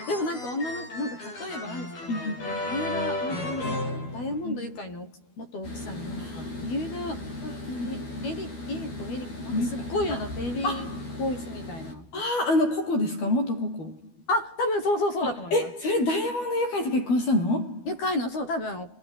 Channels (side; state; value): right; late; 12 ms